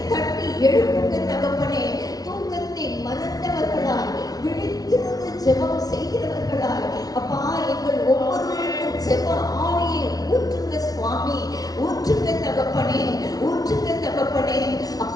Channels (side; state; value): right; late; 0.18 ms